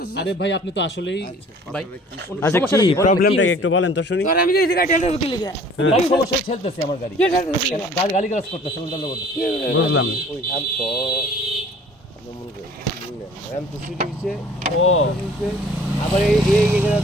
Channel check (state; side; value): normal; both; correlation 0.51